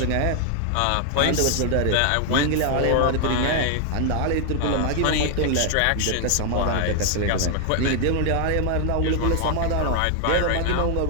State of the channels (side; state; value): both; different; correlation 0.00